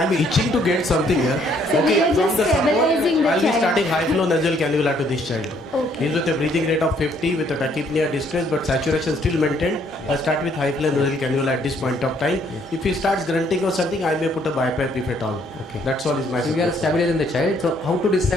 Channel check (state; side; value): normal; both; correlation 0.66